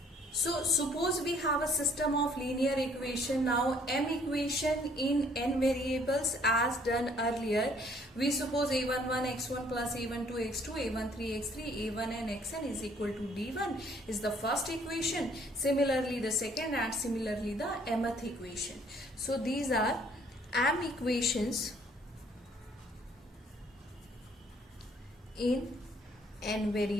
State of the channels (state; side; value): normal; both; correlation 0.62